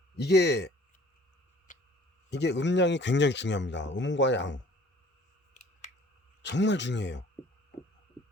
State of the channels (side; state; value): both; normal; correlation 0.53